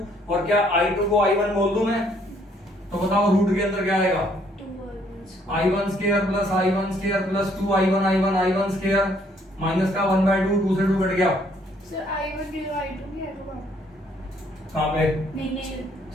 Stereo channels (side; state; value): both; normal; correlation 0.66